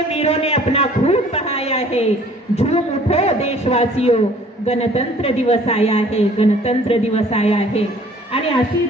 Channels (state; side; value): normal; both; correlation 0.54